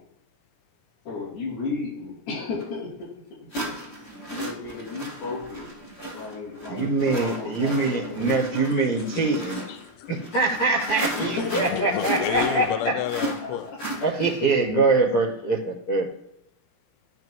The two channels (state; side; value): late; right; 17 ms